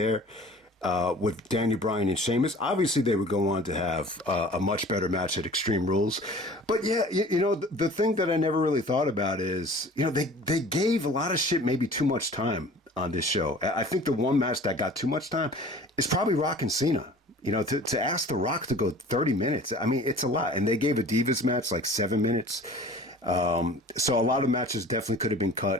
with Daniel Bryan and Sheamus. Obviously, they would go on to have a much better match at Extreme Rules. But yeah, the thing that I never really thought about is, they gave a lot of shit maybe too much time on this show. I think the one match that got too much time is probably Rock and Cena. To ask The Rock to go 30 minutes, I mean, it's a lot. And they gave a Divas match like 7 minutes. So a lot of matches definitely could have been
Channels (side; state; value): both; normal; correlation 0.45